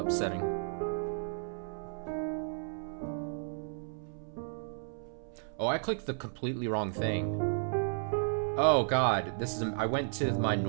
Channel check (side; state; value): left; silent; 55 dB below the other